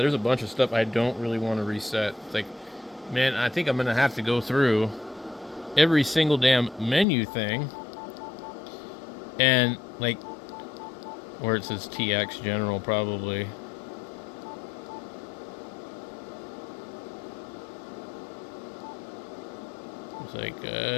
there's a bunch of stuff I don't really want to reset. It's like, man, I think I'm going to have to go through every single damn menu thing. And, like, where it says TX General, probably. It's like,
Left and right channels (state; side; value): drops out; right; at 7.1 s